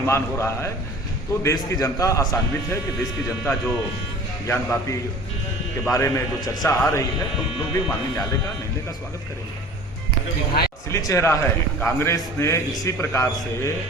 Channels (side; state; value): both; normal; correlation 0.43